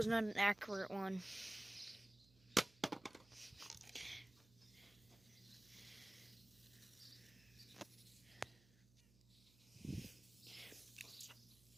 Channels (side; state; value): right; noise; hum, 26 dB below the sound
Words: not an accurate one.